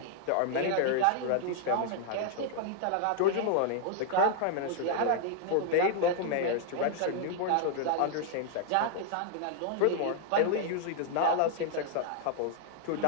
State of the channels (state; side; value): different; both; correlation 0.00